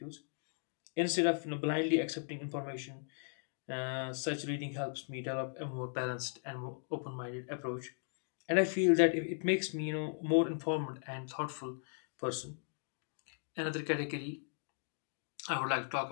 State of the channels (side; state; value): right; silent; digital silence